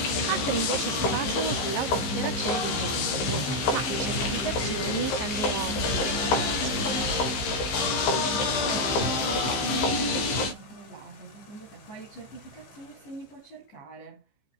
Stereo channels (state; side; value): late; right; 15 ms